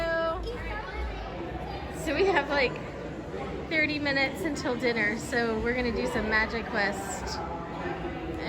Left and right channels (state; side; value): identical; both; correlation 1.00